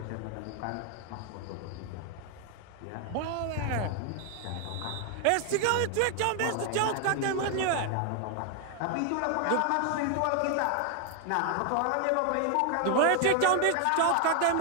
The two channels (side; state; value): both; different; correlation 0.00